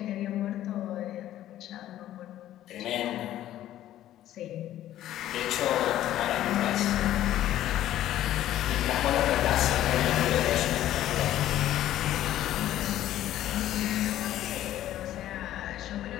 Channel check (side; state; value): right; quieter; 13.0 dB